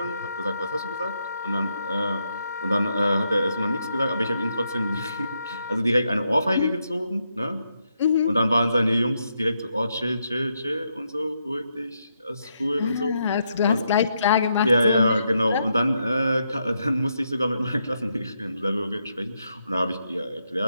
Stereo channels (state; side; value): inverted; both; correlation -0.80